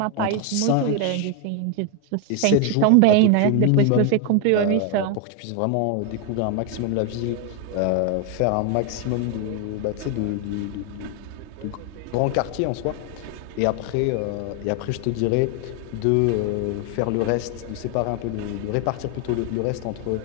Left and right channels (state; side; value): different; both; correlation 0.01